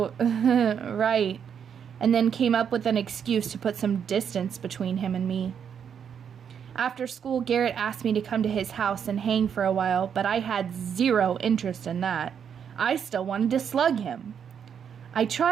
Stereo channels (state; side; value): quieter; left; 7.8 dB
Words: right," and then came up with an excuse to put some distance between him and me. After school, Garrett asked me to come to his house and hang for a while, but I had zero interest in that. I still wanted to slug him. I